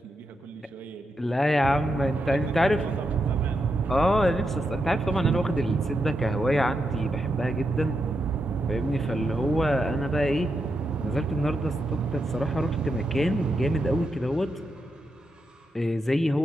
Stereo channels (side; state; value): both; normal; correlation 0.84